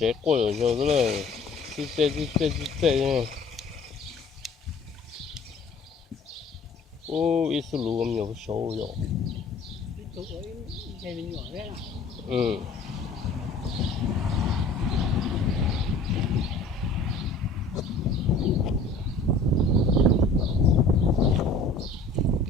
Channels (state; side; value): quieter; right; 3.3 dB